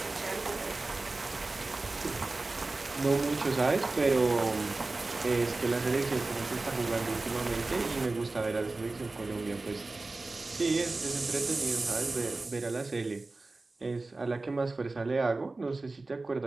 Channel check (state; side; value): quieter; left; 3.3 dB